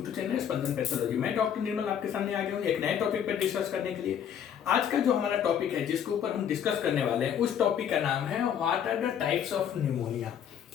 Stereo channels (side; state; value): right; quieter; 8.8 dB